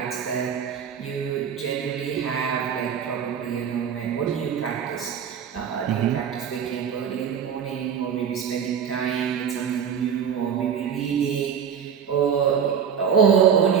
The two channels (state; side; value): quieter; left; 7.7 dB